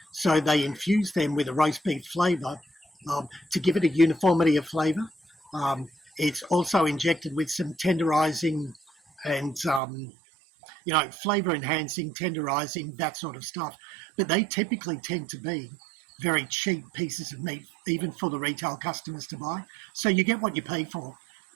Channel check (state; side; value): drops out; left; at 9.8 s